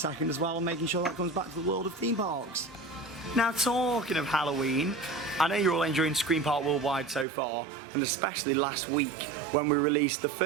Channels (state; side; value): drops out; left; at 7.2 s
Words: as well and making sure that comes back to the world of theme parks. Now, talking of Halloween, I know you're all enjoying Scream Park Worldwide so far, and especially last week when we released the